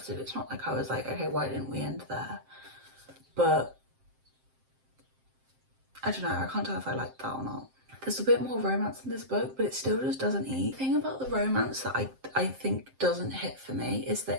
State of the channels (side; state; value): left; late; 7.6 ms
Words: It's not like I was like, okay, why didn't we end there? But I don't know, I can't tell if I liked that or not. There's a bit more romance in this book, but it still just doesn't eat. The thing about the romance that I think doesn't hit for me is